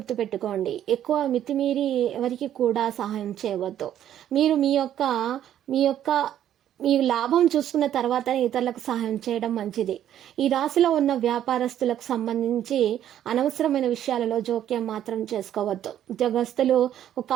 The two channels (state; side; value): quieter; left; 10.9 dB